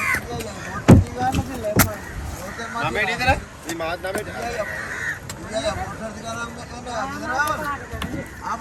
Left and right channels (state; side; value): identical; both; correlation 1.00